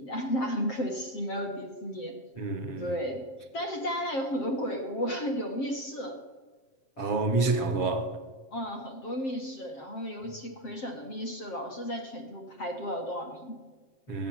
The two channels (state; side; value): late; right; 7.3 ms